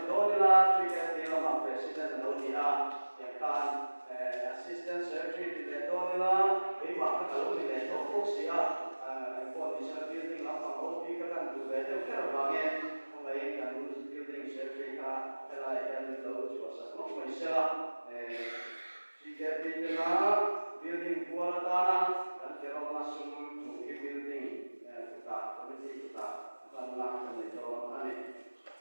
đó là truy cái gì là president là đâu đi à yang kan assistant secretary thì đó là cái mà cái đâu thì để nó phúc sĩ à condition building làm bằng hậu phi các căn tủ về theo cái là nghe không ấy cái building secretary ka hay là em đâu chỉ có sản xuất mới sẽ chỉ cái building là building của ta là cái cái là sum chủ cái building của ta committee của ta ban làm cái này cho anh ấy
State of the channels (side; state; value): both; inverted; correlation -1.00